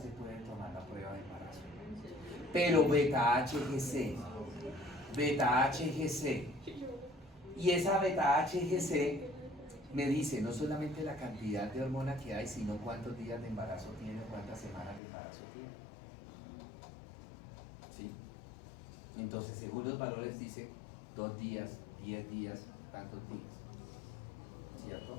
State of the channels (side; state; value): right; drops out; at 15.0 s